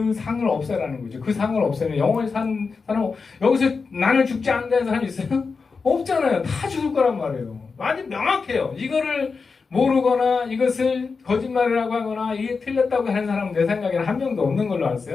상을 없애라는 거죠. 그 상을 없애면 영원히 산 사람 여기서 나는 죽지 않는다는 사람이 있어요? 없잖아요. 다 죽을 거란 말이에요. 아주 명확해요. 이거를 모르거나 이것을 거짓말이라고 하거나 이게 틀렸다고 하는 사람은 내 생각에는 한 명도 없는 걸로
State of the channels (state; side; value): quieter; right; 4.8 dB